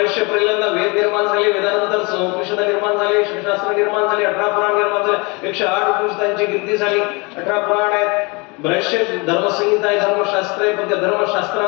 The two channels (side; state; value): right; quieter; 28.4 dB